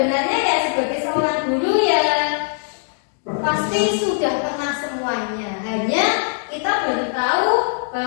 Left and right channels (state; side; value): silent; right; digital silence